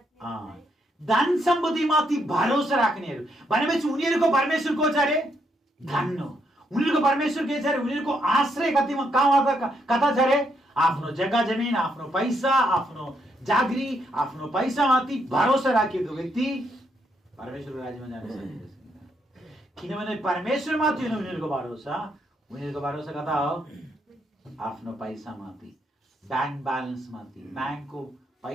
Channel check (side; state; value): both; normal; correlation 0.76